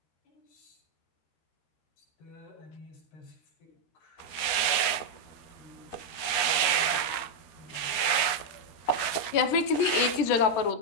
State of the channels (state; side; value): late; right; 13 ms